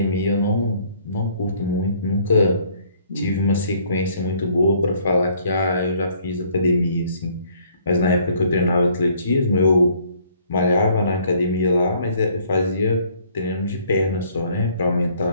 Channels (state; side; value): inverted; both; correlation -0.62